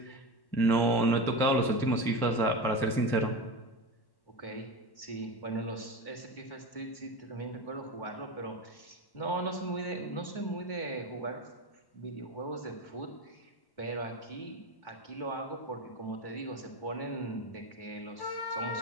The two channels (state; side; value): late; right; 1.1 ms